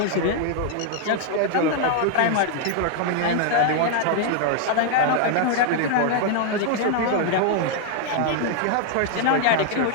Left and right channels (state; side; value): different; both; correlation 0.00